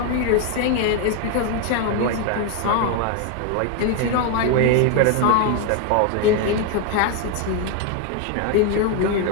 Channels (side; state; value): both; different; correlation 0.01